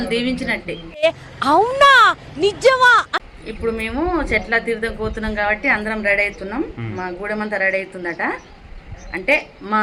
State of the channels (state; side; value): identical; both; correlation 1.00